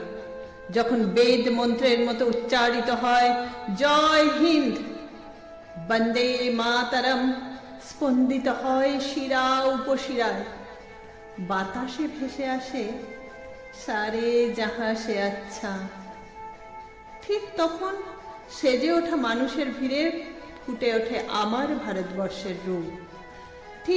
যখন বেদ মন্ত্রের মতো উচ্চারিত হয় জয় হিন্দ, বন্দে মাতরম স্পন্দিত হয় শিরা উপশিরায়, বাতাসে ভেসে আসে সারে যাহা সে আচ্ছা। ঠিক তখন সেজে ওঠা মানুষের ভিড়ে ফুটে ওঠে আমার ভারতবর্ষের রূপ।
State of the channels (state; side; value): identical; both; correlation 1.00